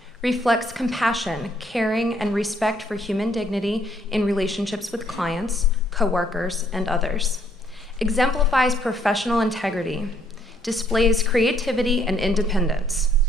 reflects compassion, caring, and respect for human dignity in relationships with clients, coworkers, and others, exemplifies professional integrity, displays creativity and independence,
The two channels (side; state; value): both; normal; correlation 0.67